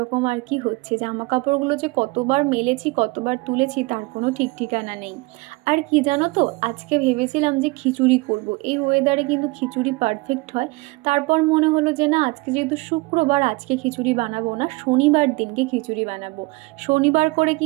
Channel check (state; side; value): quieter; left; 24.5 dB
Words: আর কি হচ্ছে। জামা কাপড়গুলো যে কতবার মেলেছি কতবার তুলেছি তার কোনো ঠিক ঠিকানা নেই। আর কি জানো তো, আজকে ভেবেছিলাম যে খিচুড়ি করব। এই ওয়েদারে কিন্তু খিচুড়ি পারফেক্ট হয়। তারপর মনে হলো যে না আজকে যেহেতু শুক্রবার আজকে খিচুড়ি বানাবো না, শনিবার দিনকে খিচুড়ি বানাবো। শনিবার করে